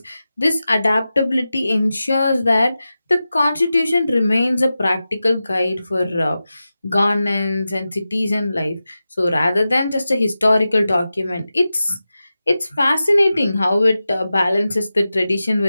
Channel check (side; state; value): both; inverted; correlation -0.93